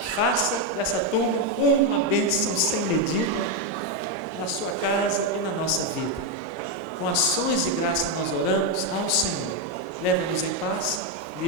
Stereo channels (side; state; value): both; normal; correlation 0.04